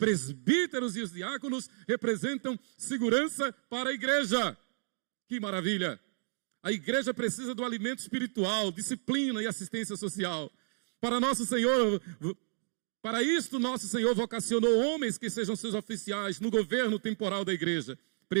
e os diáconos representam segurança para a igreja. Que maravilha! A igreja precisa do alimento espiritual, disciplina e assistência social. Para isto, nosso Senhor vocacionou homens que sejam seus oficiais no governo temporal da igreja,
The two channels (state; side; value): silent; left; digital silence